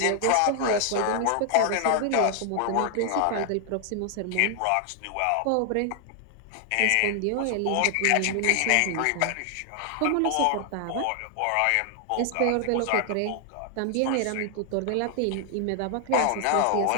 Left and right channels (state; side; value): different; both; correlation 0.00